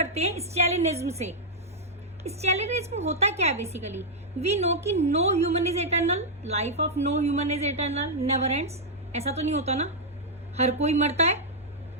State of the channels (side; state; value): both; normal; correlation -0.06